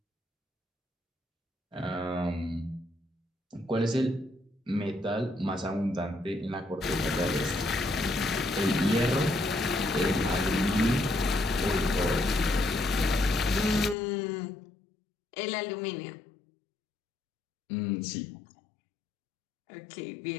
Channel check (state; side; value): drops out; right; at 14.0 s